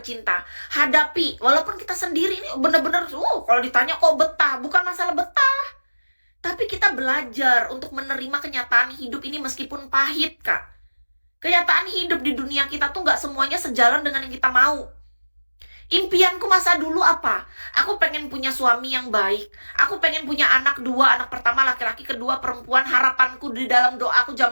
hadapi. Walaupun kita sendiri ini bener-bener kalau ditanya kok betah, bukan masalah betah, tapi kita belajar untuk menerima kenyataan hidup ini meskipun pahit Kak. Kenyataan hidup di dunia kita tuh gak semuanya sejalan dengan yang kita mau. Impianku masa dulu apa? Aku pengen punya suami yang baik. Aku pengen punya anak 2, anak pertama laki-laki, kedua perempuan. Harapanku di dalam doaku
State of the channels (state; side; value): inverted; both; correlation -1.00